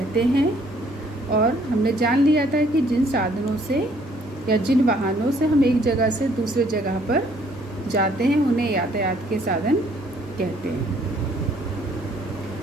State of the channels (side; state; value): both; normal; correlation 0.63